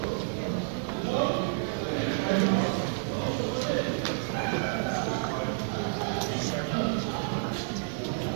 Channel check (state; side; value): silent; left; digital silence